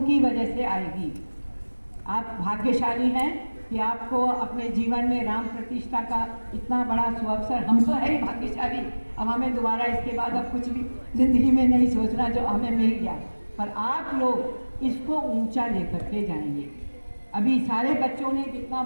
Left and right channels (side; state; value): both; inverted; correlation -1.00